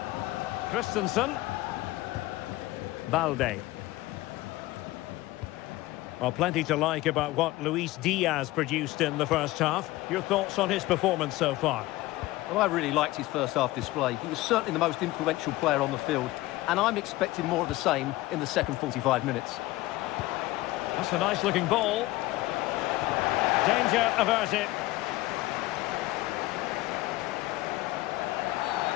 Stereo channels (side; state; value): right; quieter; 18.2 dB